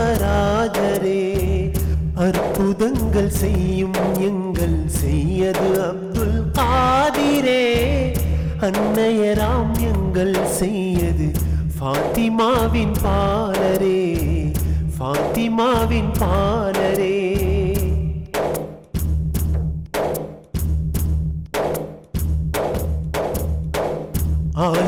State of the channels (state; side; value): identical; both; correlation 1.00